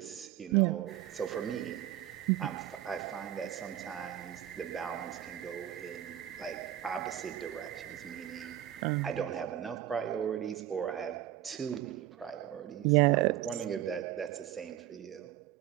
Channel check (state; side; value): quieter; left; 12.2 dB